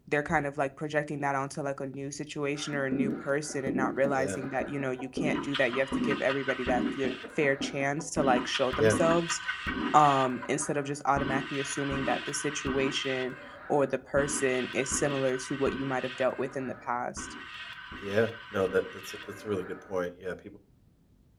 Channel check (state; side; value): identical; both; correlation 1.00